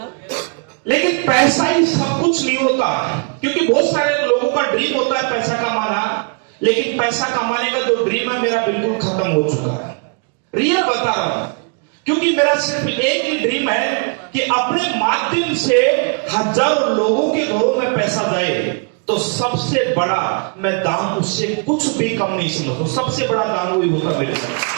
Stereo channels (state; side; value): quieter; left; 35.9 dB